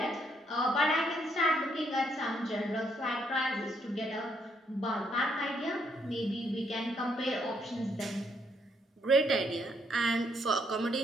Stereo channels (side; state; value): both; normal; correlation 0.72